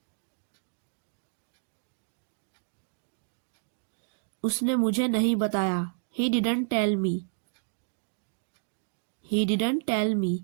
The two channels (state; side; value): silent; left; digital silence